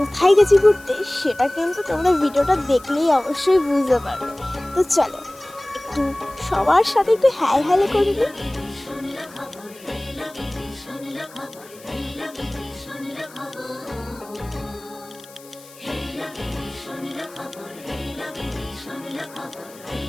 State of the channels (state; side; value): noise; left; hiss, 22 dB below the sound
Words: গেছি ঘুরতে সেটা কিন্তু তোমরা ভিডিওটা দেখলেই অবশ্যই বুঝতে পারবে। তো চলো একটু সবার সাথে একটু হাই হ্যালো করে নিই।